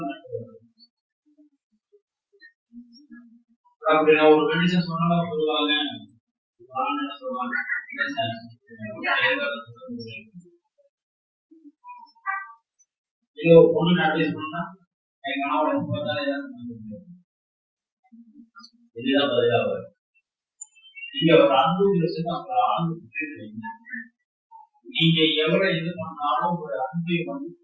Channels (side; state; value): both; identical; correlation 1.00